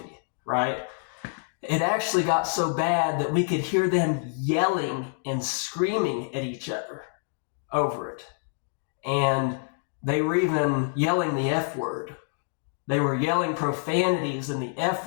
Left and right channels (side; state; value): right; silent; 60 dB below the other